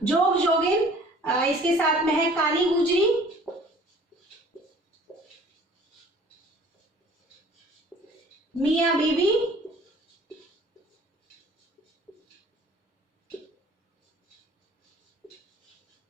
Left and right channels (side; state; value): both; normal; correlation 0.51